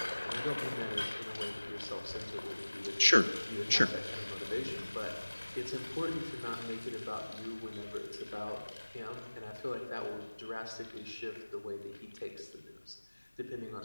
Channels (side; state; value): both; inverted; correlation -1.00